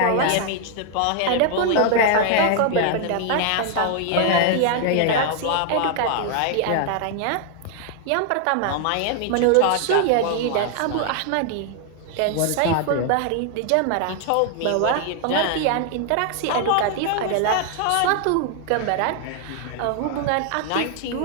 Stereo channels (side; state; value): both; different; correlation 0.00